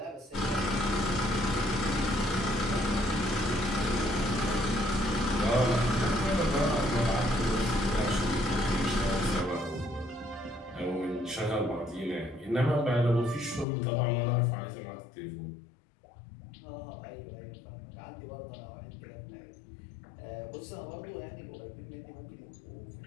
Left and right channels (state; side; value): drops out; right; at 13.7 s